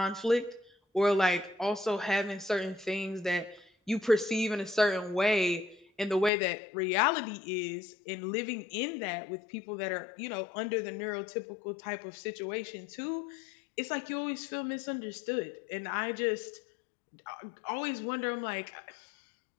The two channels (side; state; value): right; drops out; at 6.3 s